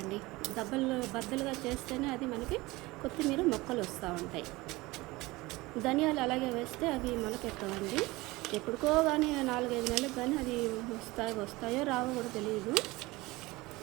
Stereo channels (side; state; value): left; quieter; 21.2 dB